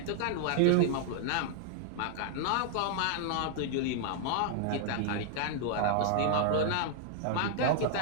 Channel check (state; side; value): different; both; correlation -0.01